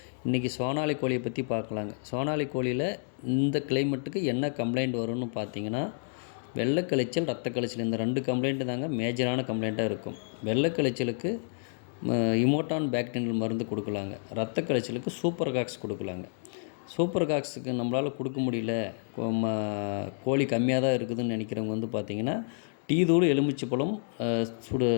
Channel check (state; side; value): silent; right; digital silence